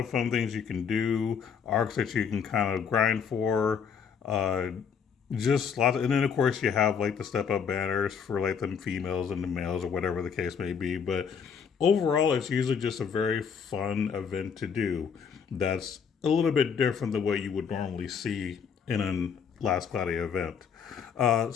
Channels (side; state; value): right; quieter; 6.8 dB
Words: fun things you can do, arcs that you can kind of grind for. Uh, just lots, and then of course you have like the step up banners for like the females and the males or whatever the case may be. But overall, it's usually just a very fun event to do. That's a little bit different than what you would normally see in a Last Cloudy event.